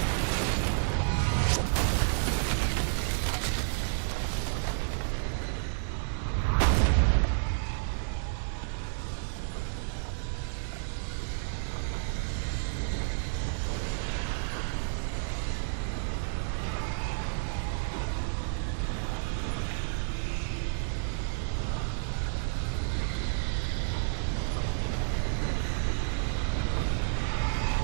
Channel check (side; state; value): left; silent; digital silence